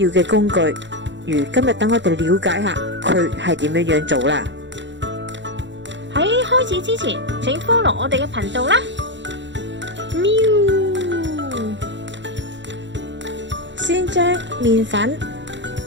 嘅工具。如今日等我哋了解下佢係點樣做啦。喺開始之前，請 follow 我哋嘅頻道啦。喵！先將麵粉、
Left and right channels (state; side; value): late; left; 0.53 ms